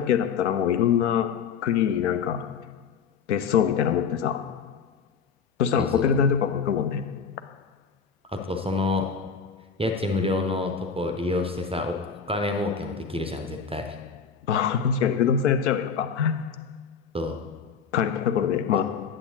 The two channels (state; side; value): quieter; right; 6.4 dB